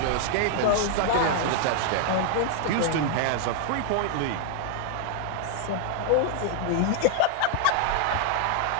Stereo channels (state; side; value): different; both; correlation 0.00